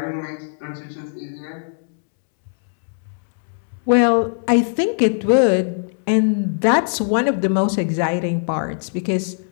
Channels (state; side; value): silent; right; 65 dB below the other